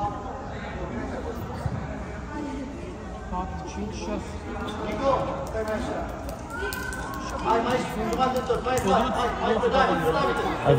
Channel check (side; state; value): both; identical; correlation 1.00